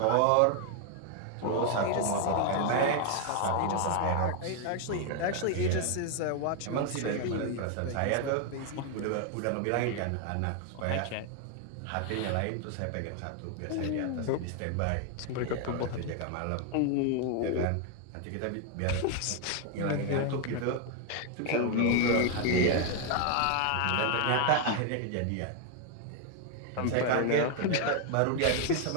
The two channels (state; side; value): different; both; correlation 0.00